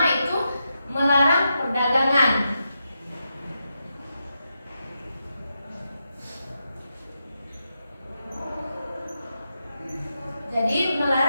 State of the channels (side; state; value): both; inverted; correlation -0.86